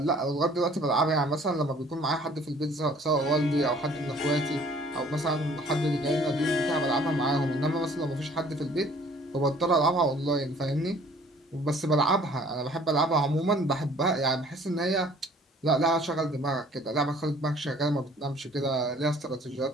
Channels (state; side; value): normal; both; correlation 0.55